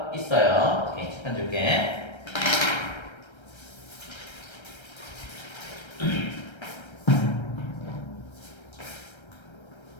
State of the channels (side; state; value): right; late; 1.3 ms